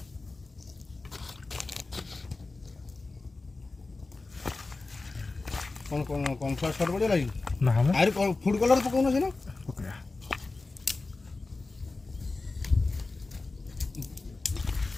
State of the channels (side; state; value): right; quieter; 3.5 dB